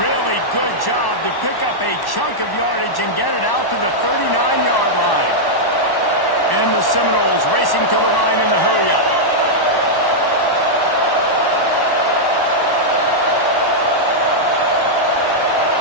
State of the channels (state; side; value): late; right; 1.1 ms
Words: good job to pick up a chunk of yardage and get it out to the 39-yard line. And the Seminoles racing to the line in the hurry-up.